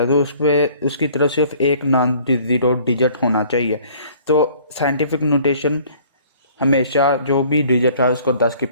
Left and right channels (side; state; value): both; inverted; correlation -0.55